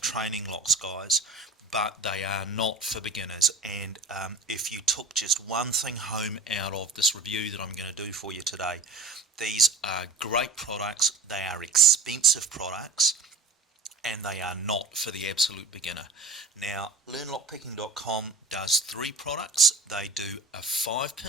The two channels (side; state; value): left; quieter; 3.6 dB